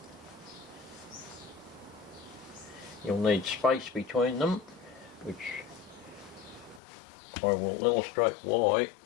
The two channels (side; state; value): right; drops out; at 6.8 s